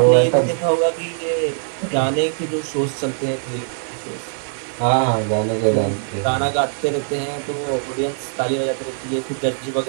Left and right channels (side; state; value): left; silent; digital silence